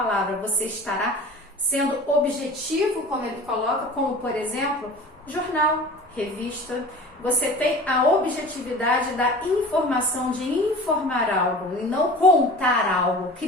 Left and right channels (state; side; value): normal; both; correlation 0.39